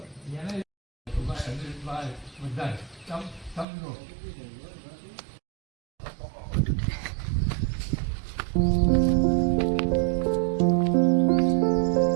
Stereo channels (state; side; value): drops out; left; at 3.7 s